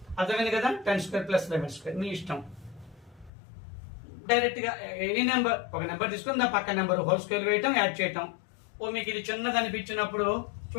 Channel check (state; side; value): drops out; right; at 3.3 s